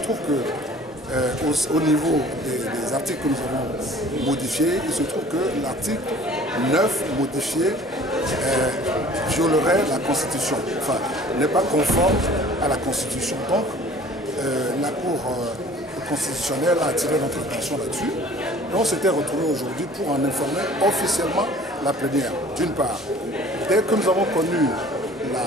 que au niveau des articles que nous avons modifiés, il se trouve que l'article 9 modifié violerait la Constitution, enfin n'est pas conforme à la Constitution. Donc la Cour constitutionnelle a attiré notre attention là-dessus et on s'était retrouvé aujourd'hui pour en informer officiellement la plénière. D'une part, dès que nous avons connu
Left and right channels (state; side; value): normal; both; correlation 0.49